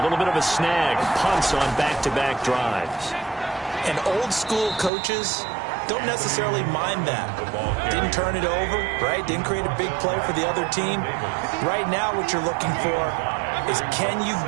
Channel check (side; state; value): left; drops out; at 4.9 s